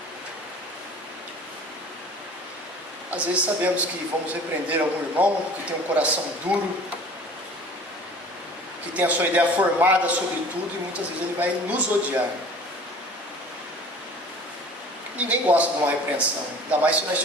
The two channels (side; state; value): both; normal; correlation 0.45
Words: Às vezes sabemos que vamos repreender algum irmão que tem um coração duro, que tem a sua ideia formada sobre tudo, e muitas vezes ele vai nos odiar. Ninguém gosta de uma repreensão, ainda mais se nós